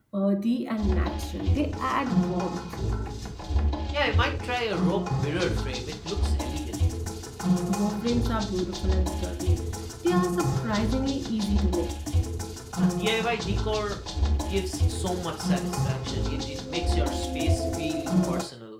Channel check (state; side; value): identical; both; correlation 1.00